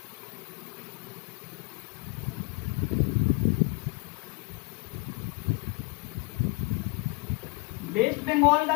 वेस्ट बंगाल का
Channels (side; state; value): right; quieter; 28.0 dB